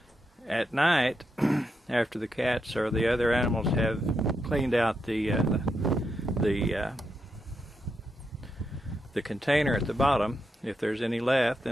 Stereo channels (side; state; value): both; normal; correlation 0.84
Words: at night, after the cats or the other animals have cleaned out the container at the bottom, if there's any left,